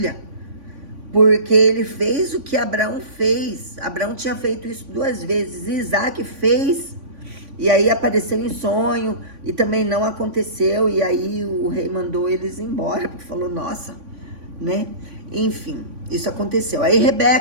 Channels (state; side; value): late; left; 3.5 ms